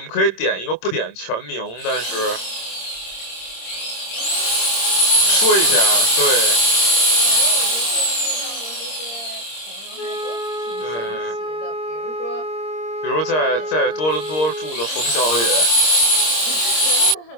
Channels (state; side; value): late; right; 26 ms